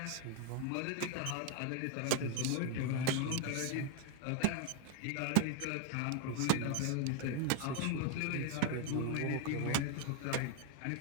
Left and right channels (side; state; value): both; different; correlation 0.01